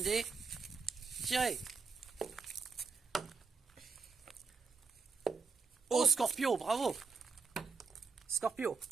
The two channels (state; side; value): quieter; left; 4.7 dB